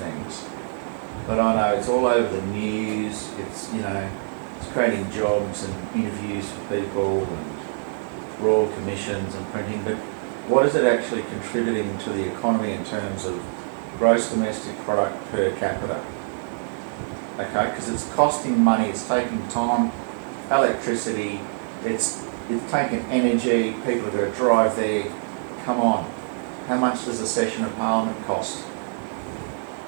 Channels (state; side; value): silent; left; digital silence